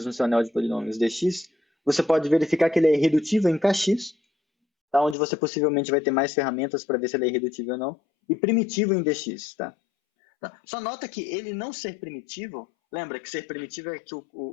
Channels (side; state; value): right; drops out; at 5.2 s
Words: no seu anel de polinômios dx, você pode verificar que ele é irredutível em kx, tá? Onde você possivelmente vai ter mais ferramentas para ver se ele é irredutível ou não, e primitivo em dx. Tá? Só nota que ele não ser primitivo, lembra que ser primitivo é que